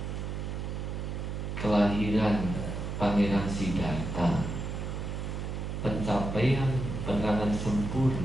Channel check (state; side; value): noise; right; hum, 4 dB below the sound